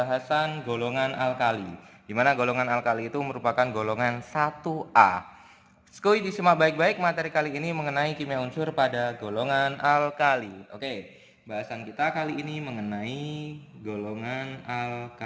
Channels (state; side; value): identical; both; correlation 1.00